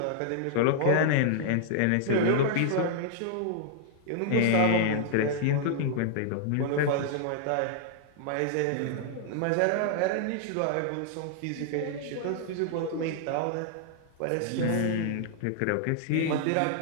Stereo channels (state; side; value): different; both; correlation -0.01